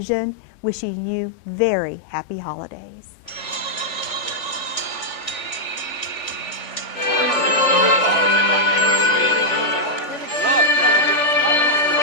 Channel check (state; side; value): late; right; 3.4 ms